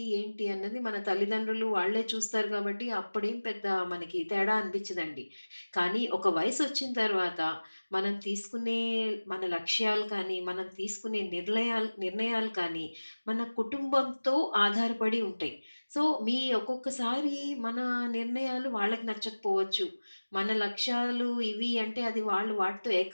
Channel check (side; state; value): both; inverted; correlation -1.00